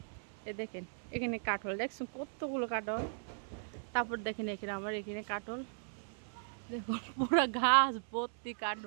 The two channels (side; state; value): left; silent; 53 dB below the other